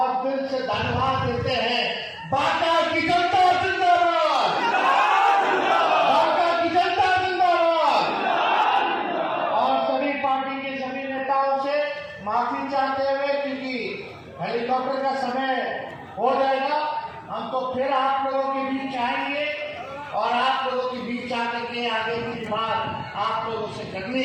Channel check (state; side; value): identical; both; correlation 1.00